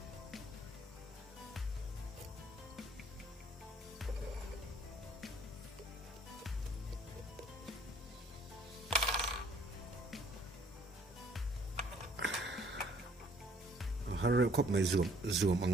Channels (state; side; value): normal; both; correlation 0.59